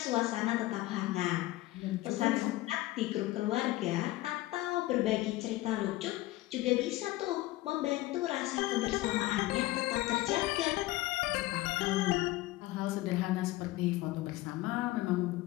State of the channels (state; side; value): quieter; right; 17.9 dB